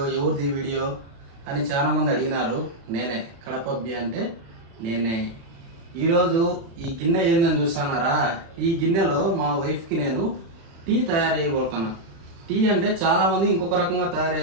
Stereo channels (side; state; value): left; late; 36 ms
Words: వీడియో అని చాలామంది అడిగినారు. నేనే కడపబ్బి అంటే నేనే. ఈరోజు ఈ గిన్నె ఏందని చూస్తున్నారా? ఈ గిన్నెలో మా వైఫ్కి నేను టీ తయారు చేయబోతున్నా. టీ అంటే చాలామంది ఇంకొక రకంగా తయారు